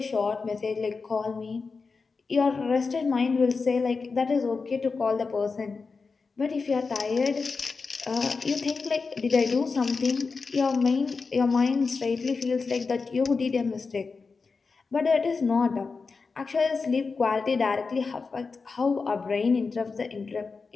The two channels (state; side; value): quieter; right; 4.6 dB